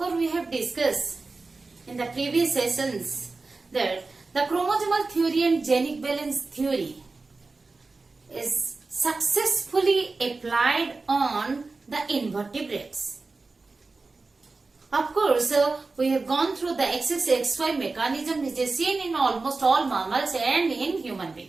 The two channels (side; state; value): left; quieter; 3.8 dB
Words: we have discussed in the previous sessions that the chromosomal theory and genic balance theory is successfully applied on the invertebrates. Of course, we have gone through the XXXY mechanism which is seen in almost all mammals and in human